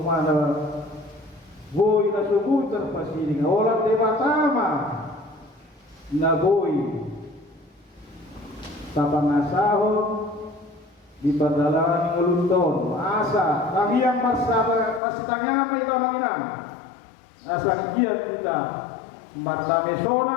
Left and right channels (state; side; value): drops out; right; at 15.0 s